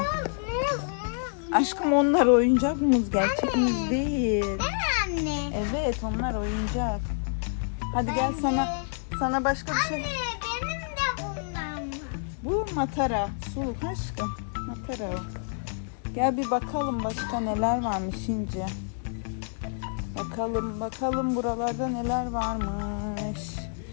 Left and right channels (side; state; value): right; silent; digital silence